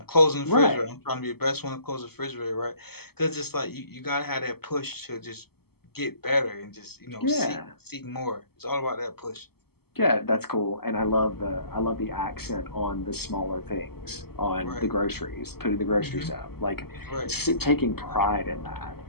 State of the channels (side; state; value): right; late; 0.96 ms